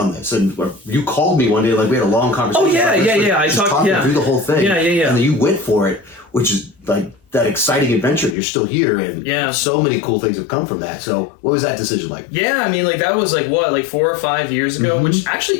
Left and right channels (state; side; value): drops out; right; at 8.3 s